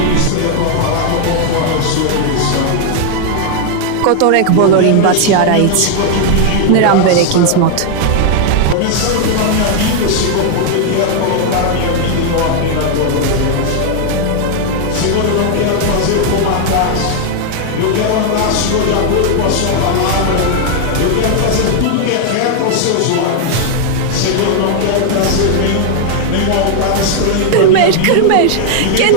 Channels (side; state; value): both; different; correlation 0.00